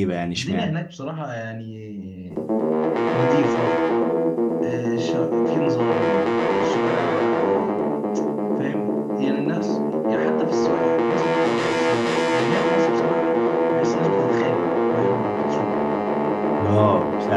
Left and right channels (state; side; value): identical; both; correlation 1.00